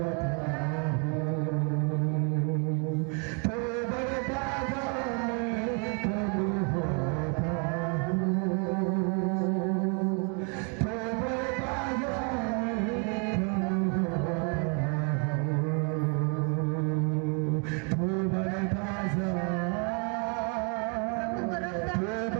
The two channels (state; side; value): quieter; left; 37.5 dB